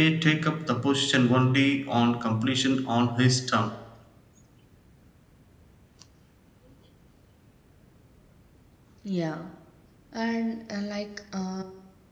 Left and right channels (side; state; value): both; identical; correlation 1.00